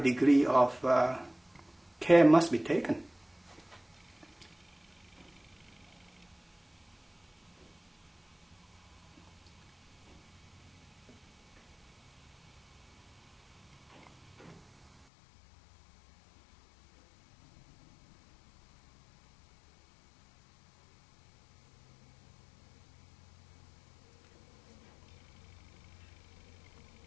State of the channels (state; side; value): drops out; right; at 15.1 s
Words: of care must be taken.